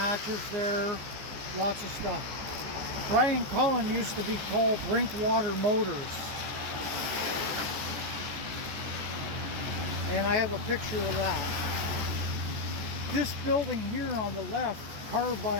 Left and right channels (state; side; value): late; left; 14 ms